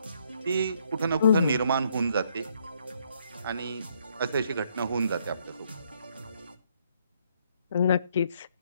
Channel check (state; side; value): inverted; both; correlation -0.70